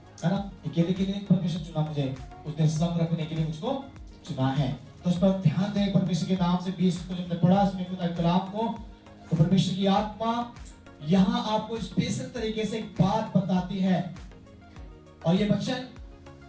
ना? अकेले के लिए परमेश्वर चुना मुझे, उसने संग रखने के लिए मुझको चुना है। तो उस पर ध्यान दें। परमेश्वर के नाम से 20 को जब पढ़ा इसमें खुदा के कलाम को, तो परमेश्वर की आत्मा यहाँ आपको स्पेशल तरीके से एक बात बताती है। और ये वचन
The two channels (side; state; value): both; identical; correlation 1.00